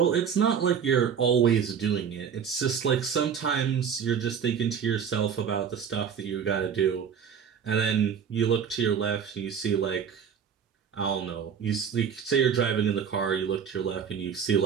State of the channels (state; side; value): quieter; left; 7.5 dB